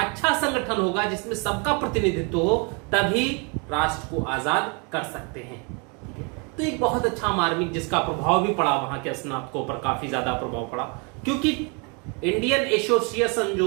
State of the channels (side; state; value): left; quieter; 33.6 dB